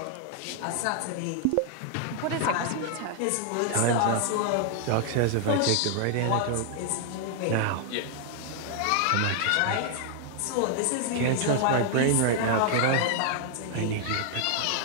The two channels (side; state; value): both; different; correlation 0.00